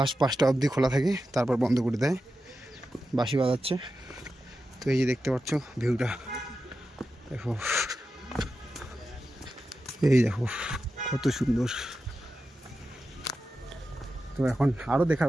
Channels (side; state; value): both; normal; correlation 0.91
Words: 5টা অবধি খোলা থাকে, তারপর বন্ধ করে দেয়, বাঁশি বাজাচ্ছে। তো এই যে দেখতে পাচ্ছ ভিউটা দেখো, এই দেখো কত সুন্দর। তো এখন আরও